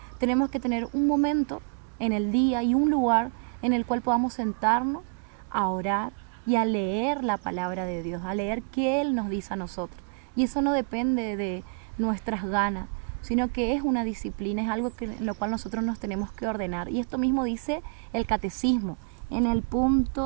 Tenemos que tener un momento en el día y un lugar en el cual podamos sentarnos a orar y a leer la palabra de Dios, a leer qué Él nos dice a nosotros. Y eso no depende de nuestras ganas, sino que es una disciplina, es algo en lo cual nosotros nos tenemos que ordenar. Y esto mismo dice el Catecismo en el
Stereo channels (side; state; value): left; quieter; 37.7 dB